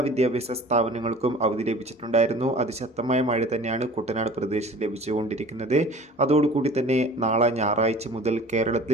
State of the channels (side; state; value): both; normal; correlation 0.44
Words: വിദ്യാഭ്യാസ സ്ഥാപനങ്ങൾക്കും അവധി ലഭിച്ചിട്ടുണ്ടായിരുന്നു. അതിശക്തമായ മഴ തന്നെയാണ് കുട്ടനാട് പ്രദേശത്ത് ലഭിച്ചുകൊണ്ടിരിക്കുന്നത്. അതോടുകൂടി തന്നെ നാളെ ഞായറാഴ്ച മുതൽ കേരളത്തിൽ